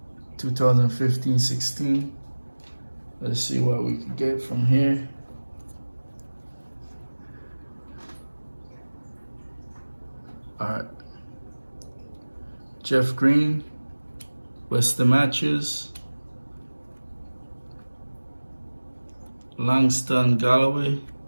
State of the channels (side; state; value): both; inverted; correlation -1.00